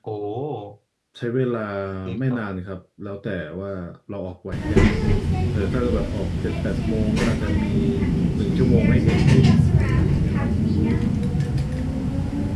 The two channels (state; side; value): identical; both; correlation 1.00